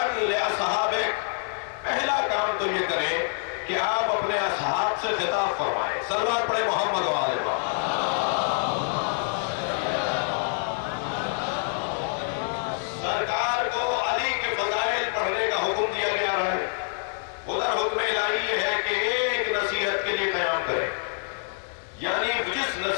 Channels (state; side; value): silent; right; 61 dB below the other